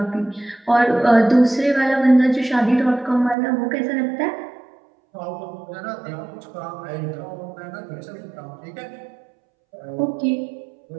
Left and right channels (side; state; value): left; drops out; at 3.4 s